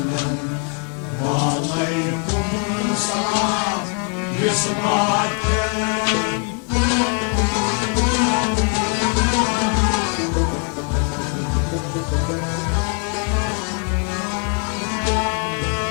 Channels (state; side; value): quieter; right; 39.7 dB